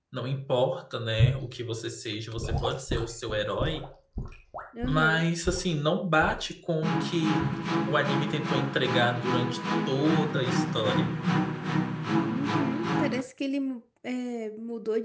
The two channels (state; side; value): identical; both; correlation 1.00